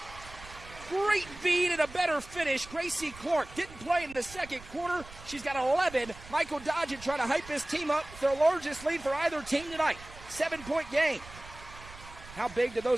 Great feed and a better finish. Gracie Clark didn't play in the second quarter. She's got 11. Michael Dodgen trying to hype his team up. Their largest lead for either team tonight. 7-point game. How big do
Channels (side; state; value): right; noise; rumble, 17 dB below the sound